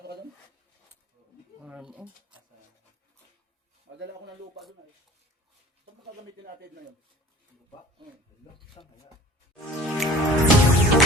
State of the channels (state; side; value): normal; both; correlation 0.46